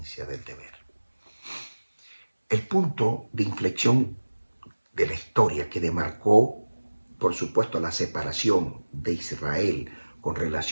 del deber. El punto de inflexión de la historia que demarcó, por supuesto, la separación de Israel con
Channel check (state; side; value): inverted; both; correlation -1.00